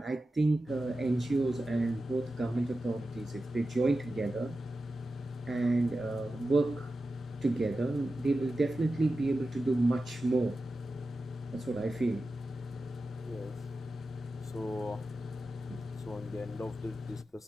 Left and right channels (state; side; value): normal; both; correlation 0.92